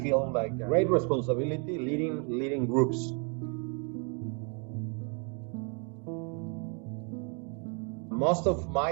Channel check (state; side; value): quieter; left; 36.1 dB